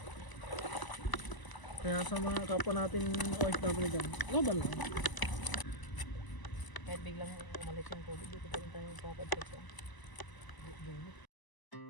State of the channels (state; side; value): late; right; 1.0 ms